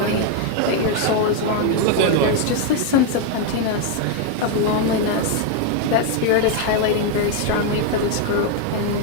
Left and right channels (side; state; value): both; different; correlation 0.01